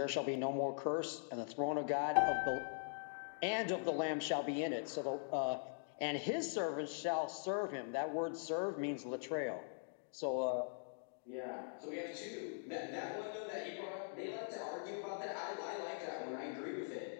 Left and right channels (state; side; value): silent; right; digital silence